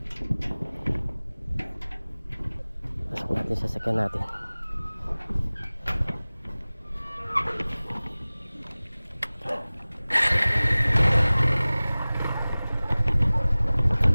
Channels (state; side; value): inverted; both; correlation -0.99